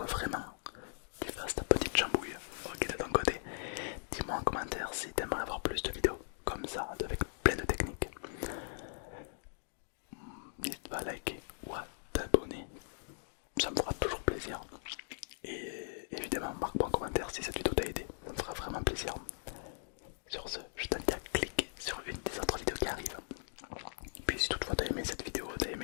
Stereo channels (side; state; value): right; silent; digital silence